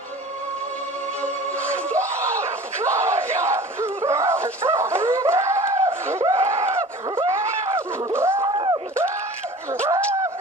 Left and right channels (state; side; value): normal; both; correlation 0.41